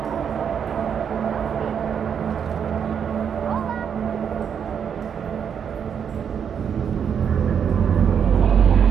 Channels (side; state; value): left; quieter; 7.7 dB